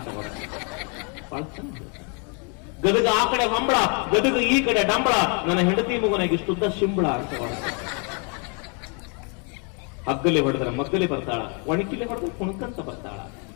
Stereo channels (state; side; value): quieter; right; 36.4 dB